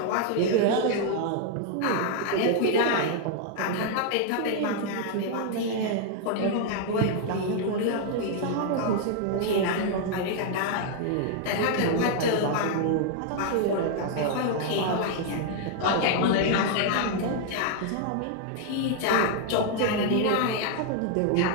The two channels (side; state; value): both; different; correlation 0.00